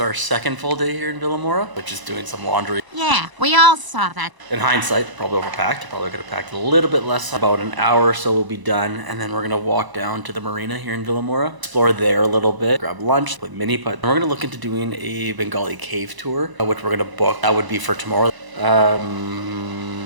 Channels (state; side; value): late; left; 1.0 ms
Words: Our second full day here in Vilamoura, which is doing some laundry. Yeah, we all saw that. In hindsight, probably overpacked. Probably could have packed a little bit less. About an hour or so we'll be done, and then we're gonna walk down to the marina here in Vilamoura, explore there a little bit, grab lunch, play mini putt. And we're gonna look into doing a Bengali cave tour, which we're gonna book. That would be for tomorrow.